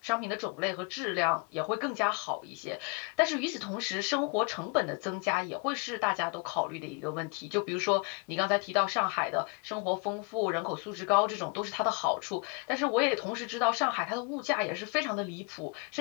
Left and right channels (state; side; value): quieter; right; 32.3 dB